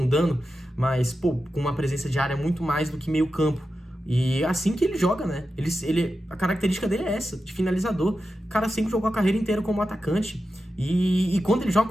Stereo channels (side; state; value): both; normal; correlation 0.91